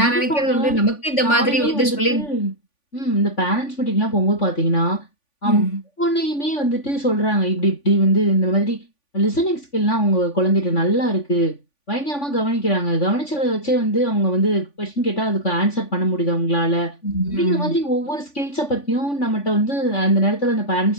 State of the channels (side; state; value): right; late; 3.5 ms